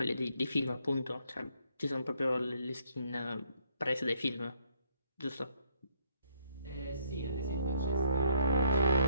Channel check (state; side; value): inverted; both; correlation -0.68